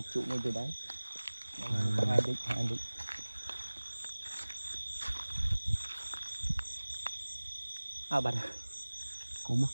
trụ ngay từ đấy. Có hai đích. À bạn. Cốm á?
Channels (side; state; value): both; inverted; correlation -1.00